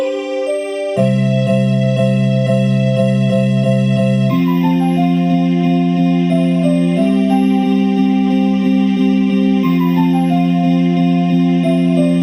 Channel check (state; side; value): identical; both; correlation 1.00